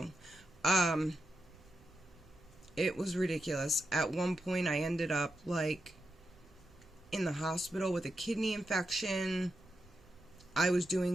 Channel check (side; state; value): right; noise; rumble, 25 dB below the sound